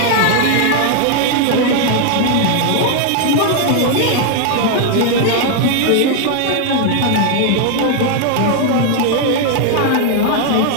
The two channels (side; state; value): both; different; correlation 0.00